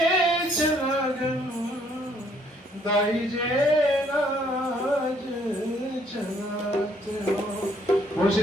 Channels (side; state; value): both; normal; correlation 0.66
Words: चलागन दाई जे राज चलात हो